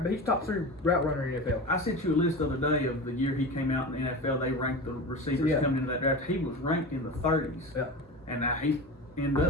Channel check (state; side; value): normal; both; correlation 0.29